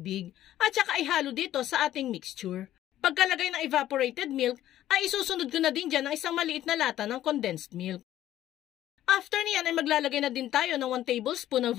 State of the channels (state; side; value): quieter; right; 13.0 dB